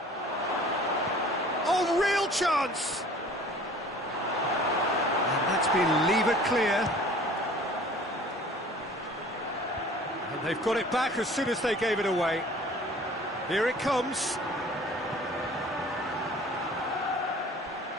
Oh, real chance! And that's been levered clear. And they've got it back as soon as they gave it away. Here it comes.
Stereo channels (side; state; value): both; normal; correlation 0.48